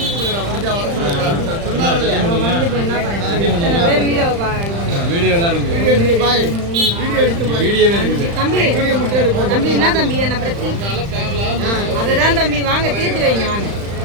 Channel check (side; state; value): left; late; 35 ms